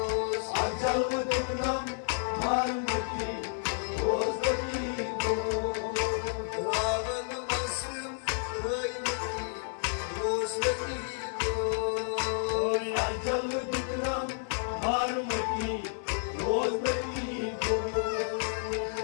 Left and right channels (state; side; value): silent; right; 57 dB below the other